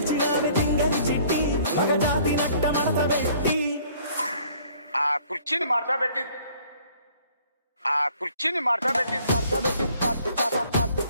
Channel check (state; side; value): inverted; both; correlation -0.59